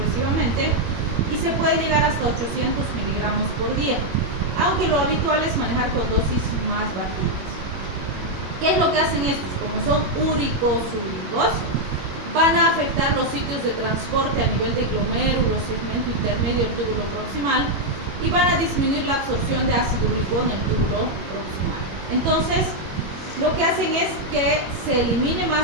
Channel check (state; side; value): late; left; 21 ms